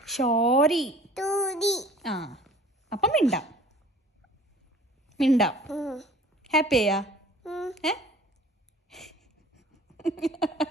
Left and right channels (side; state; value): both; normal; correlation 0.48